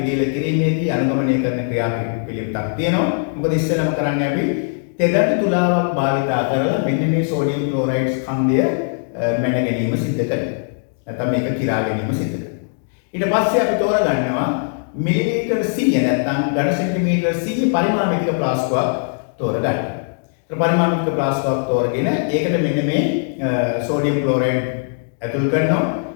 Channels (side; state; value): right; silent; 66 dB below the other